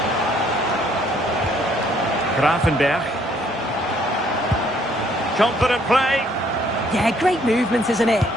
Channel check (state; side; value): normal; both; correlation 0.65